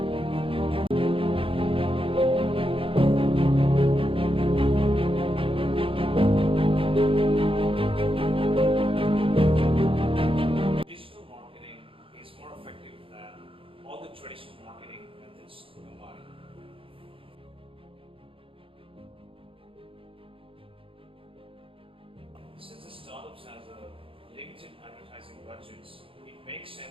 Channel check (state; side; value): late; left; 0.26 ms